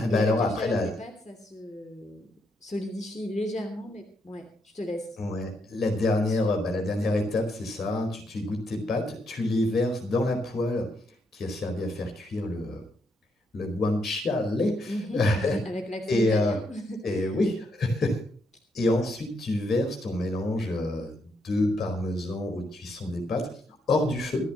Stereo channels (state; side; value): normal; both; correlation 0.77